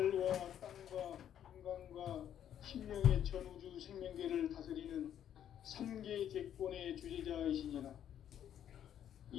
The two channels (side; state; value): right; quieter; 10.0 dB